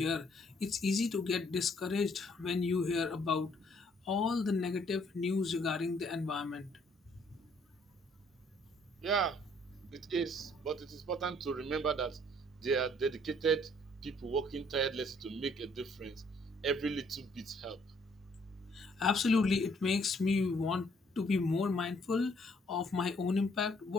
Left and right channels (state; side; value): normal; both; correlation 0.64